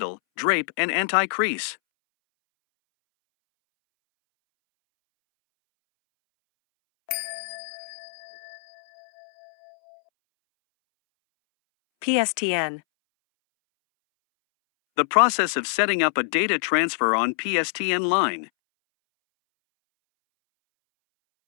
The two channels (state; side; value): silent; right; 62 dB below the other